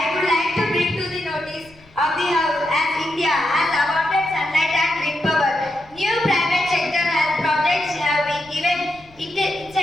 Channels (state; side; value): noise; left; rumble, 27 dB below the sound